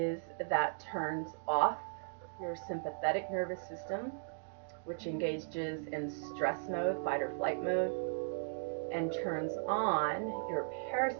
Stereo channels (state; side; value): silent; left; digital silence